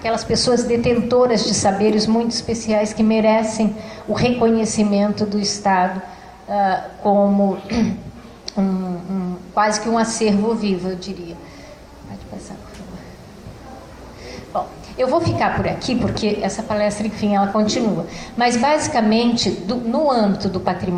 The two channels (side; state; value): both; identical; correlation 1.00